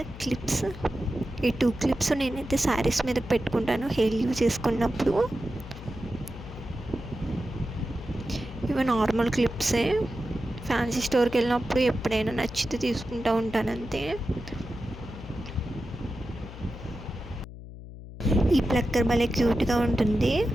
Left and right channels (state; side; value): noise; left; hum, 14 dB below the sound